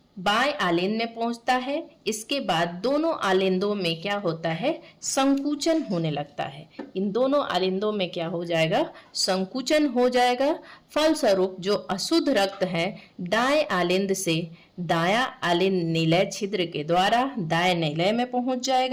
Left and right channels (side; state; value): both; identical; correlation 1.00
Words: बाएं आलिंद में पहुंचता है। इसके बाद दोनों आलिंदों में क्या होता है? संकुचन होने लगता है। इन दोनों आलिंदों में क्या हो जाएगा? संकुचन हो जाएगा। फलस्वरूप जो अशुद्ध रक्त है दाएं आलिंद से दायां आलिंद निलय छिद्र के द्वारा दाएं निलय में पहुंच